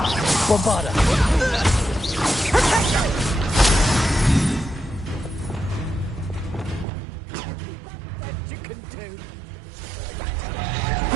Bombarda! Is that the best you can do?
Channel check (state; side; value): drops out; left; at 6.9 s